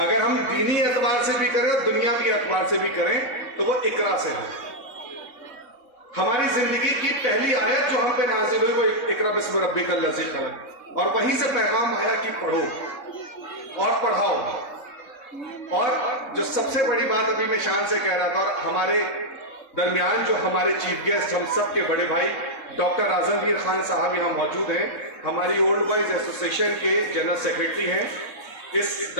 हम दीनी एतबार से भी करें और दुनियावी एतबार से भी करें तो वो इकरा से है। हमारी जिंदगी की पहली आयत जो हम पे नाजिल हुई वो इकरा बिस्म रब्बिकल लज़ी खलक़, और वहीं से पैगाम आया कि पढ़ो और पढ़ाओ। और जो सबसे बड़ी बात अभी मैं शान से कह रहा था, और हमारे दरमियान जो हमारे चीफ गेस्ट, हम सबके बड़े भाई डॉक्टर आजमगीर खान साहब यहाँ मौजूद हैं, हमारी ओल्ड बॉयज एसोसिएशन के जनरल सेक्रेटरी हैं। इस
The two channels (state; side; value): late; right; 3.7 ms